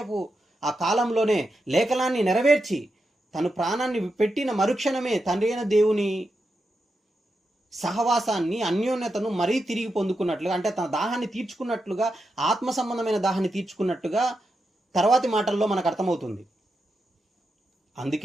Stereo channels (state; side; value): normal; both; correlation 0.87